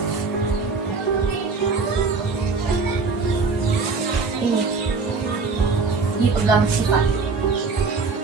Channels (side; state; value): left; quieter; 4.5 dB